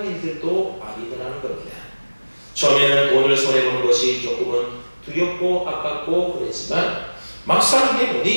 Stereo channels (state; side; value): inverted; both; correlation -1.00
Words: 일들도 아니더라는 겁니다. 처음에는 돈을 손해보는 것이 조금은 두렵고 아깝고 그랬지만 막상